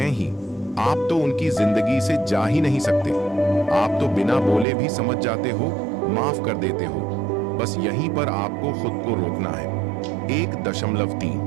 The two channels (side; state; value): left; drops out; at 4.7 s